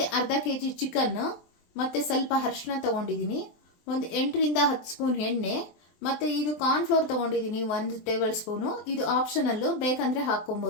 ಅರ್ಧ ಕೆಜಿ ಚಿಕನ್, ಮತ್ತೆ ಸ್ವಲ್ಪ ಅರಿಶಿನ ತಗೊಂಡಿದ್ದೀನಿ, ಒಂದು 8 ರಿಂದ 10 ಸ್ಪೂನ್ ಎಣ್ಣೆ, ಮತ್ತೆ ಇದು ಕಾರ್ನ್ ಫ್ಲೋರ್ ತಗೊಂಡಿದ್ದೀನಿ 1 ಟೇಬಲ್ ಸ್ಪೂನು. ಇದು ಆಪ್ಷನಲ್ಲು, ಬೇಕಂದ್ರೆ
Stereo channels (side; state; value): right; late; 23 ms